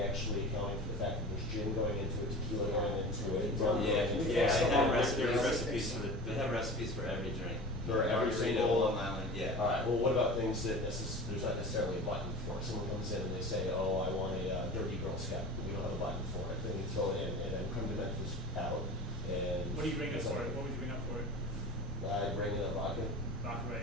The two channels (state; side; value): normal; both; correlation 0.35